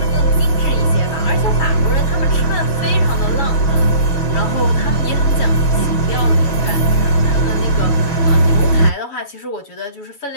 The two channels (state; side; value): late; right; 6.3 ms